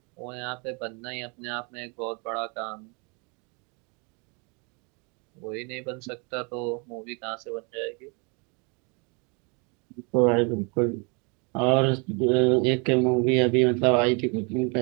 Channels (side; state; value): left; quieter; 32.9 dB